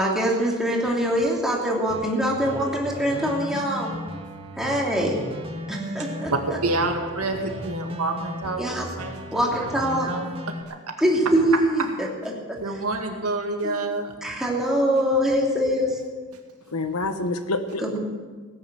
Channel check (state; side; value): normal; both; correlation 0.42